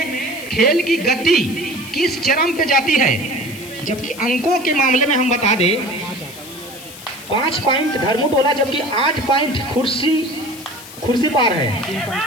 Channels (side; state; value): left; noise; hiss, 16 dB below the sound